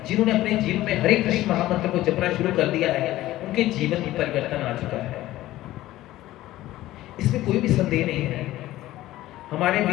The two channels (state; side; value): quieter; right; 15.6 dB